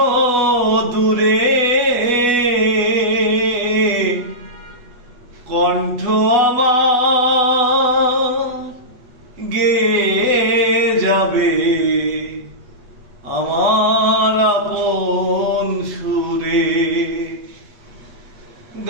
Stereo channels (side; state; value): left; late; 8.0 ms